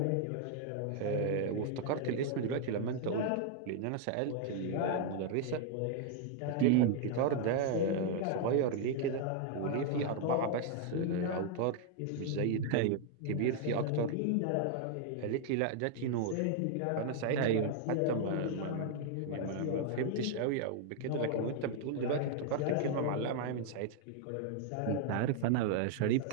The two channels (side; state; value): both; different; correlation 0.00